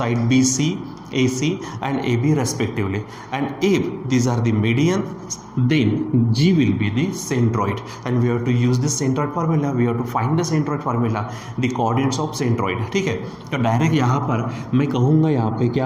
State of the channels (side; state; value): both; identical; correlation 1.00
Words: BC, AC and AB respectively. And if these are the medians, then G will be the centroid. And we have to use this centroid formula. We have to find the centroid formula, the coordinates of centroid. ठीक है, तो direct यहाँ पर मैं कहूँगा यहाँ पे